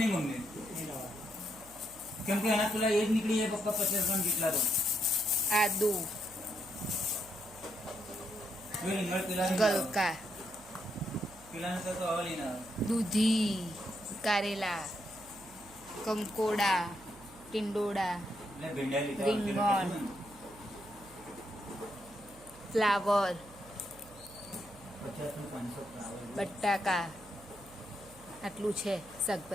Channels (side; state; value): right; noise; hum, 21 dB below the sound